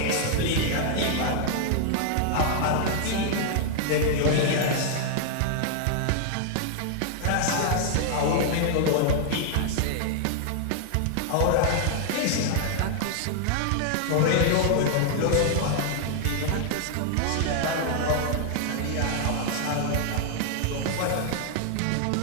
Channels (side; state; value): both; different; correlation 0.00